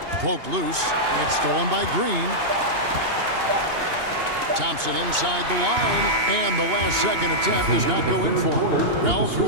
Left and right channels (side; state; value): left; late; 2.8 ms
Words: Poked loose. It's stolen by Green. Thompson inside the line. And the last second attempt does not go in for him. Well,